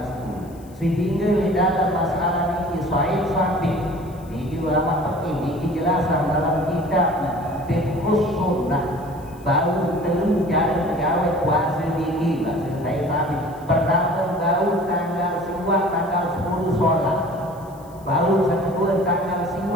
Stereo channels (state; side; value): noise; left; hiss, 27 dB below the sound